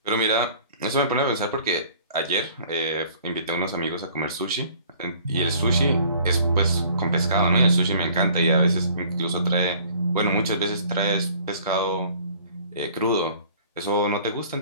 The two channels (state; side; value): inverted; both; correlation -0.53